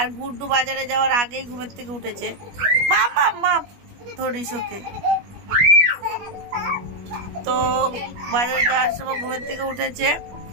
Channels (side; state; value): left; late; 21 ms